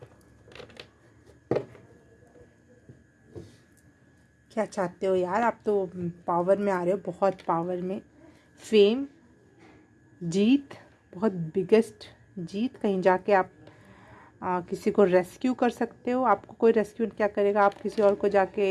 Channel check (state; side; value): identical; both; correlation 1.00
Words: क्या चाहते हो यार, आप तो पावर में आ रहे हो, बहुत पावर में। फेम, जीत, बहुत बिगेस्ट जीत, कहीं जाके आप किसी को रेस्क्यू कर सकते हो। आपको कोई रेस्क्यू क्या करेगा, आप किसी और को